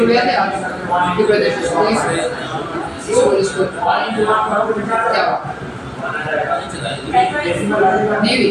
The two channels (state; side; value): identical; both; correlation 1.00